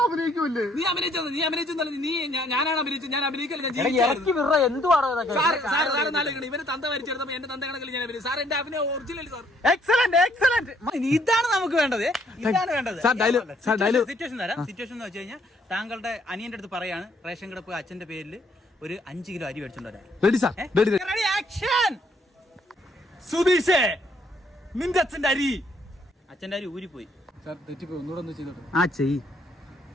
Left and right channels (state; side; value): normal; both; correlation 0.67